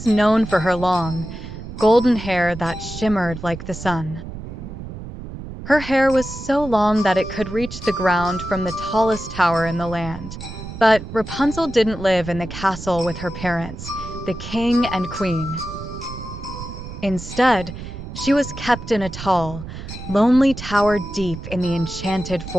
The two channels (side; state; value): right; noise; rumble, 11 dB below the sound